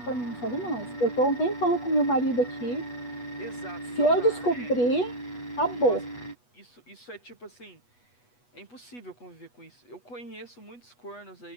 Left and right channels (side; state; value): right; late; 8.2 ms